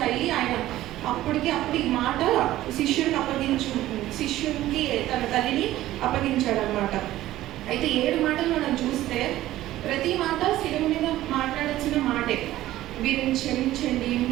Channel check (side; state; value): left; quieter; 14.9 dB